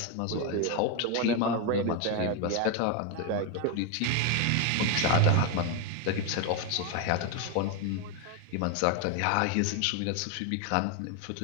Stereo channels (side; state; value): both; different; correlation 0.01